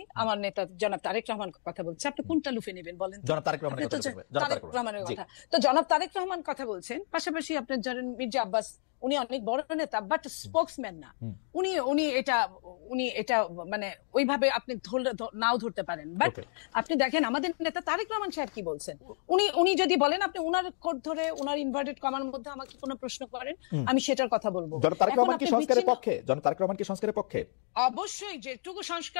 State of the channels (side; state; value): right; silent; 57 dB below the other